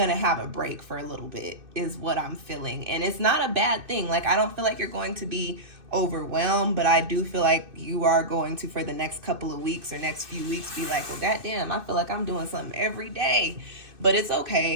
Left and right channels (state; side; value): late; left; 2.6 ms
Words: have a break for a little bit, is what I'm feeling. And it's not a bad thing. Like, I don't feel like you're going to be overwhelmed, but I do feel like you are going to, for the next couple of weeks or next few weeks, be like, well, goddamn, I feel like I'm doing something every day. But it's